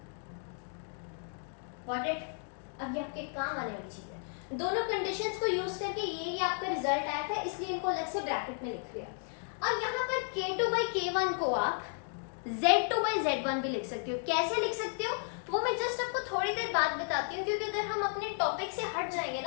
गॉट इट। अब ये आपके काम आने वाली चीज है। दोनों कंडीशंस को यूज करके ये आपका रिजल्ट आया था, इसलिए इनको अलग से ब्रैकेट में लिख लिया। अब यहाँ पर k2 by k1 को आप z2 by z1 भी लिख सकते हो। कैसे लिख सकते हो वो मैं जस्ट आपको थोड़ी देर बाद बताती हूँ, क्योंकि अगर हम अपने टॉपिक से हट जाएंगे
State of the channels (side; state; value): right; silent; 55 dB below the other